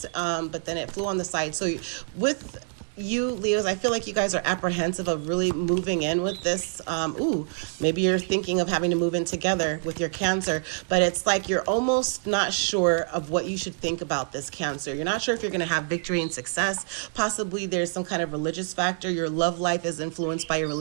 but then it flew on the side. So with you, Leos, I feel like you guys are apprehensive of really moving in with this. Maybe you're thinking of having to move in together with your Cancer, but it's like you're almost not sure of what you should think about this Cancer. You're not sure if you're going to have victory and success. Possibly there's some kind of religious factor. Your love life is influenced by your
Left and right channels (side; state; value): left; silent; digital silence